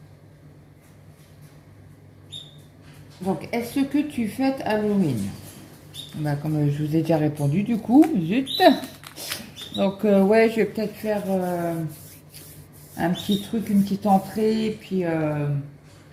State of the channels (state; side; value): identical; both; correlation 1.00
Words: Donc, est-ce que tu fêtes Halloween? Bah, comme je vous ai déjà répondu, du coup, zut. Donc, ouais, je vais peut-être faire un petit truc, une petite entrée, et puis...